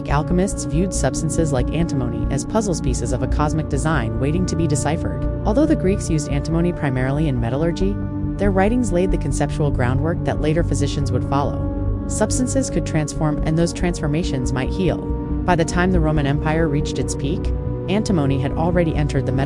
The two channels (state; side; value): identical; both; correlation 1.00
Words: alchemists viewed substances like antimony as puzzle pieces of a cosmic design waiting to be deciphered. Although the Greeks used antimony primarily in metallurgy, their writings laid the conceptual groundwork that later physicians would follow. Substances could transform, and those transformations might heal. By the time the Roman Empire reached its peak, antimony had already entered the